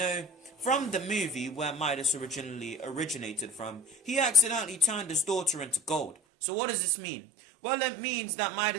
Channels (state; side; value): drops out; left; at 6.2 s